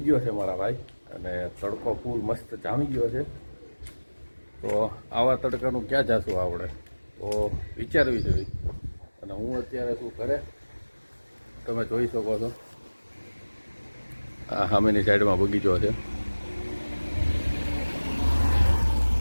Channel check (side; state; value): both; inverted; correlation -1.00